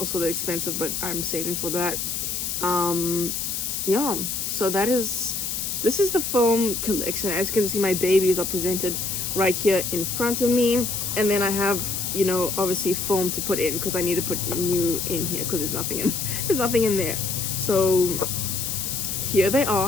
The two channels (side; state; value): left; noise; hiss, 2 dB below the sound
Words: they're expensive, but I'm saving for that. Yeah, so this is the film collection. As you can see, my babies are presented right here in front of me, and then I have, you know, obviously film to put in, because I need to put new in here because there's nothing in there. So here they